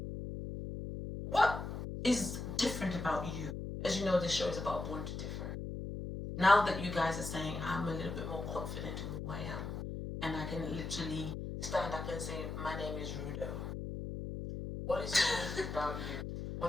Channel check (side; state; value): left; noise; hum, 5 dB below the sound